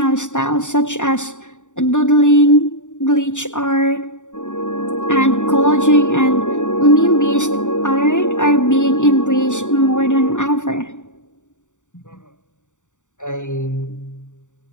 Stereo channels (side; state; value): right; late; 0.86 ms